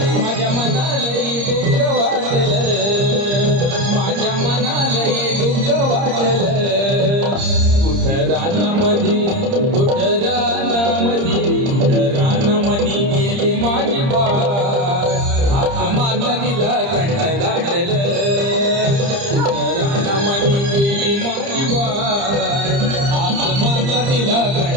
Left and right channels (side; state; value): left; late; 30 ms